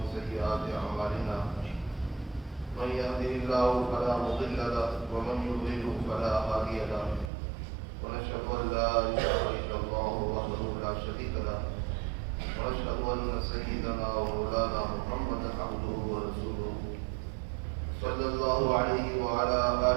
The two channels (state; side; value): drops out; left; at 7.3 s